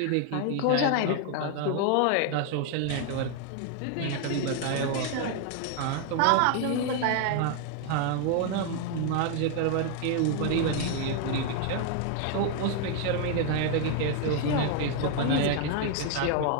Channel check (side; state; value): both; different; correlation 0.00